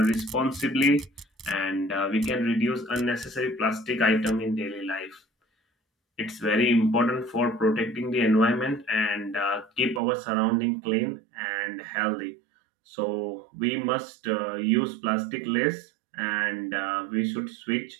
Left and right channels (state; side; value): drops out; left; at 10.0 s